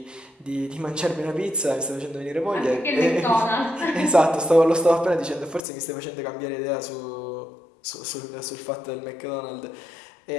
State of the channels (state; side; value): drops out; right; at 5.6 s